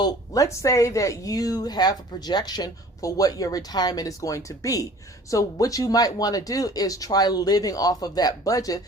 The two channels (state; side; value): normal; both; correlation 0.48